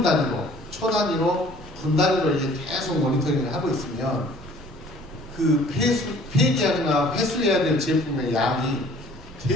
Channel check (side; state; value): both; normal; correlation 0.53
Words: 단위로, 초 단위로, 분 단위로 이제 계속 모니터링을 하고 있으면 그 폐기하거나 회수해야 될 제품의 양이